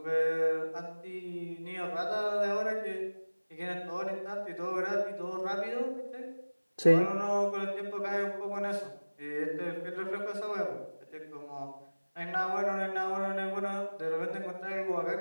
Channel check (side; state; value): both; inverted; correlation -1.00